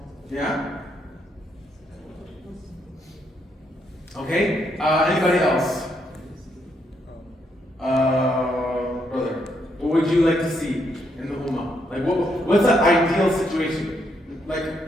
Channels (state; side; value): normal; both; correlation 0.76